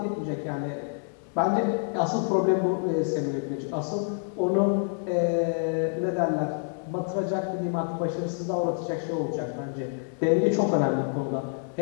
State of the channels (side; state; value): right; silent; 60 dB below the other